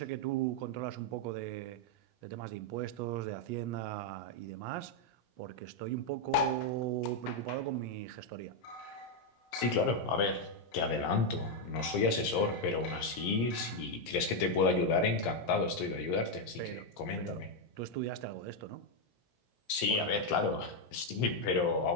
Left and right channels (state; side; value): late; right; 17 ms